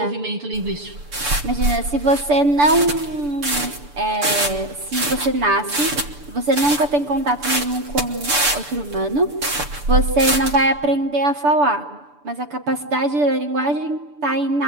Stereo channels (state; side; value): late; left; 6.9 ms